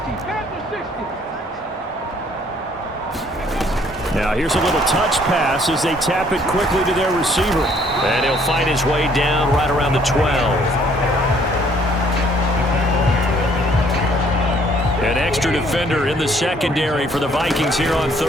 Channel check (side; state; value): both; normal; correlation 0.62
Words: Now here's a little touch pass as they tap it quickly to their receiver. And he'll find his way down right around the 12. An extra defender in the secondary for the Vikings here on